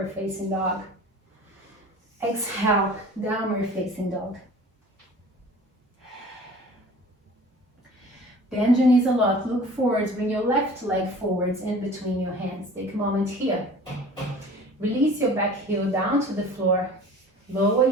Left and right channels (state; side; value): normal; both; correlation 0.44